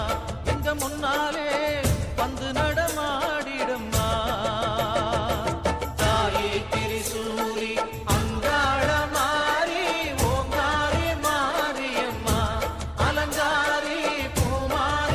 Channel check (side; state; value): both; identical; correlation 1.00